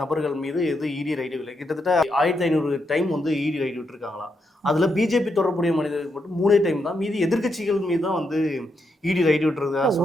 நபர்கள் மீது ஈடி ரைடு இல்லை. கிட்டத்தட்ட 1500 டைம் வந்து ஈடி ரைடு விட்டுருக்காங்களாம். அதில் பிஜேபி தொடர்புடைய மனிதர்கள் மட்டும் 3 டைம் தான், மீதி எதிர்கட்சிகள் மீது தான் வந்து ஈடி ரைடு விட்டுறது.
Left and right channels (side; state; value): both; normal; correlation 0.81